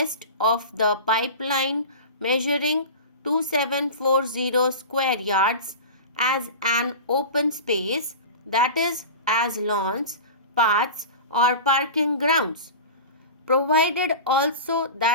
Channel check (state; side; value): inverted; both; correlation -0.31